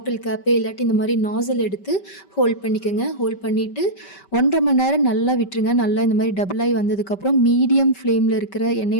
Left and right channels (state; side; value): late; right; 5.2 ms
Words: கேப்பு இல்லாட்டி இந்த மாரி நாஸல் எடுத்து ஹோல்ட் பண்ணிக்கங்க. ஹோல்ட் பண்ணிட்டு 1 1/2 மணி நேரம் நல்லா விட்டுருங்க. நல்லா இந்த மாரி டபுள் ஆயி வந்ததுக்கப்புறம் மீடியம் ஃப்ளேம்ல இருக்கிற